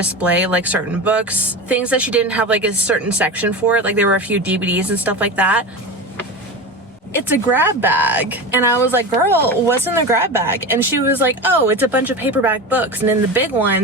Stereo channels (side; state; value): both; normal; correlation 0.26